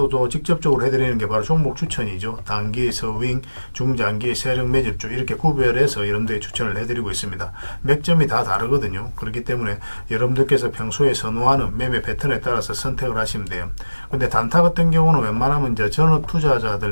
또 직접적으로 해드리는 게 바로 종목 추천이죠. 단기, 서윙, 중장기, 세력 매집주 이렇게 구별해서 여러분들이 추천을 해드리고 있습니다. 맥점이 다 다르거든요. 그렇기 때문에 여러분들께서 평소에 선호하는 매매 패턴에 따라서 선택을 하시면 돼요. 근데 단타 같은 경우는 웬만하면 이제 전업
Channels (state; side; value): inverted; both; correlation -1.00